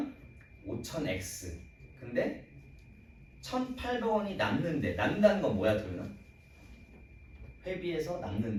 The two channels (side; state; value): both; identical; correlation 1.00